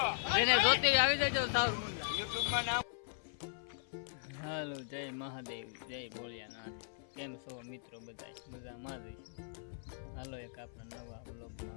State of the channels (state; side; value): silent; right; 52 dB below the other